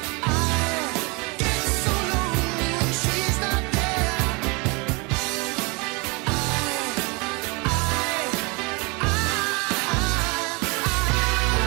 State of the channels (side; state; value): left; quieter; 29.1 dB